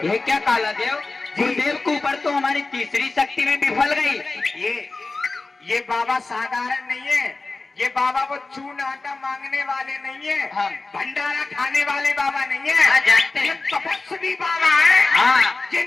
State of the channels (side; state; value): right; quieter; 3.5 dB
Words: ये क्या काला देव गुरुदेव के ऊपर तो हमारी तीसरी शक्ति में विफल गई। ये बाबा साधारण नहीं है। ये बाबा वो चून आटा मांगने वाले नहीं है। हाँ। भंडारा खाने वाले बाबा नहीं है। हाँ, जानते हैं। ये तपस्वी बाबा है। हाँ। ये